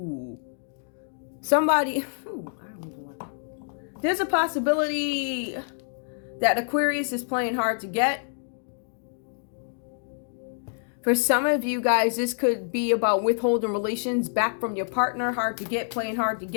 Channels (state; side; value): silent; right; digital silence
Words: Somebody, there's a possibility that Aquarius is playing hard to get. For some of you guys, this could be about withholding relations back from your partner. Hard to get, playing hard to